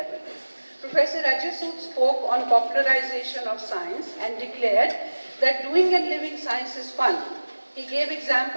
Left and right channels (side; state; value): both; inverted; correlation -1.00